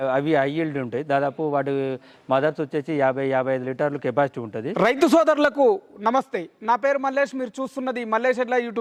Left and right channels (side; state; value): both; identical; correlation 1.00